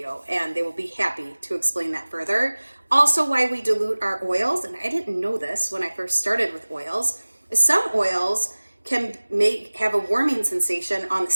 and they will be happy to explain that further. Also, why we dilute our oils, and I didn't know this when I first started with oils, is some oils can have a warming sensation on the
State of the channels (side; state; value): both; inverted; correlation -1.00